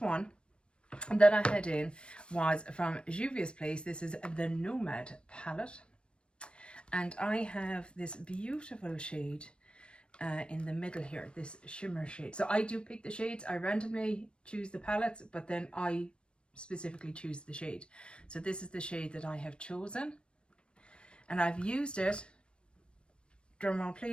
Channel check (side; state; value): right; late; 0.054 ms